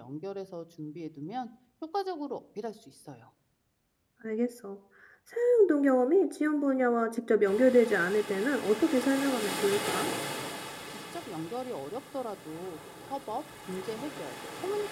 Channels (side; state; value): both; identical; correlation 1.00